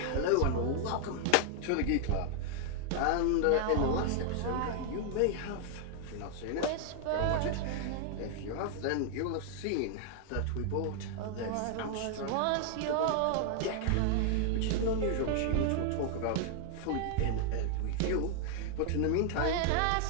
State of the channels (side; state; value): both; different; correlation 0.00